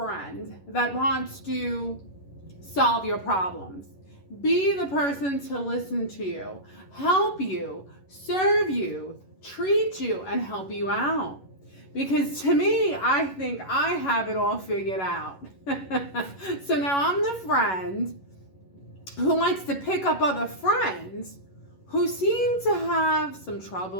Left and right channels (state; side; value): late; right; 11 ms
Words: that wants to solve your problems, be the person to listen to you, help you, serve you, treat you, and help you out. Because to me, I think I have it all figured out. So now I'm the friend who likes to pick up other friends who seem to have some